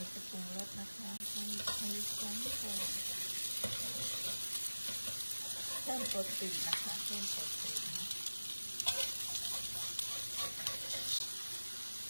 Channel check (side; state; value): both; inverted; correlation -1.00